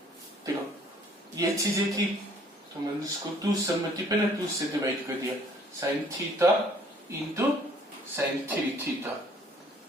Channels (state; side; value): normal; both; correlation 0.58